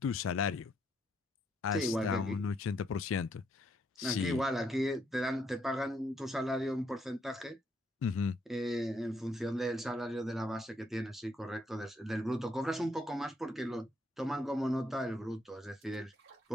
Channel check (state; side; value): normal; both; correlation 0.73